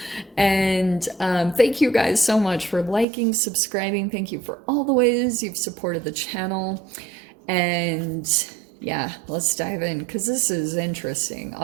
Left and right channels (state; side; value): drops out; left; at 3.1 s